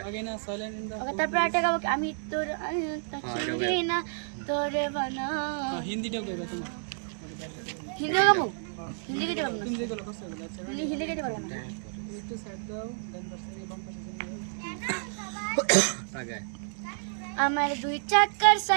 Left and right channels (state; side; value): silent; left; 58 dB below the other